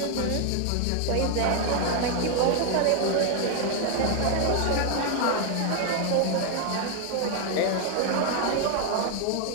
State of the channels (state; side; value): different; both; correlation 0.01